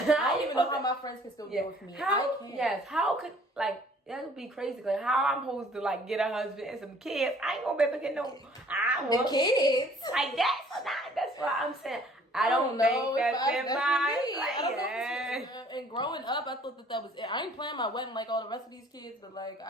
don't even know how my friends can still deal with me. I can't. Yes. How could, like, that would be crazy. Like, how I'm supposed to, like, get a husband and some kids? I ain't gonna be able to get no. The kids. Like, that's what I'm saying. I don't think that's in my plan. And growing up, I thought that was it. I ain't planning my wedding like all the rest of these kids, but, like,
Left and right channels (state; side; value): normal; both; correlation 0.56